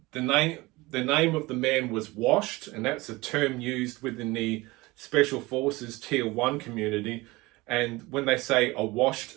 name of the man was Washed, and that's a term used within the Special Forces Tier 1 community. And when they say a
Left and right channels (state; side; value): quieter; left; 21.8 dB